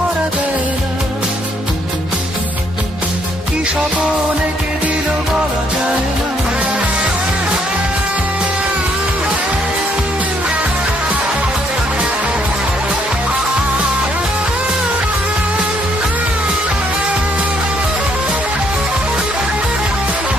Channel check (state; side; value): normal; both; correlation 0.69